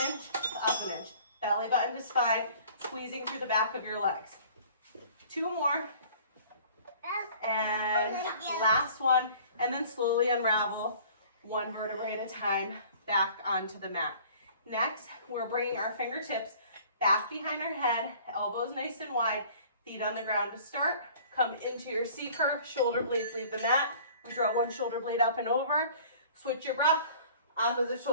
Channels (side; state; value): both; inverted; correlation -0.50